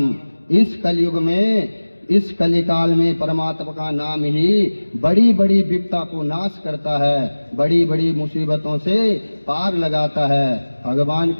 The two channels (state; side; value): inverted; both; correlation -1.00